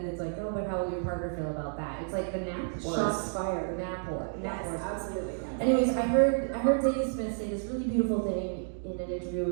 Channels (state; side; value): silent; left; digital silence